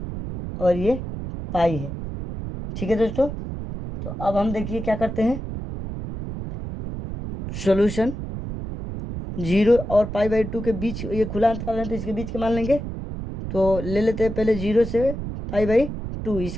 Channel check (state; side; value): noise; right; rumble, 7 dB below the sound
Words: और ये पाई है। ठीक है दोस्तों, तो अब हम देखिए क्या करते हैं, सॉल्यूशन 0 और पाई/2 के बीच ये खुला अंतराल है, तो इसके बीच के मान लेंगे। तो ले लेते हैं पहले 0 से पाई/2,